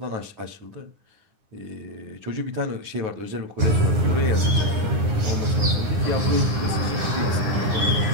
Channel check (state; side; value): late; left; 9.7 ms